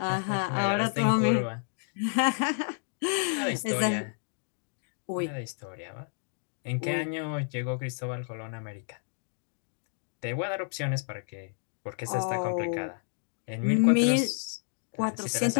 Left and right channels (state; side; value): silent; right; digital silence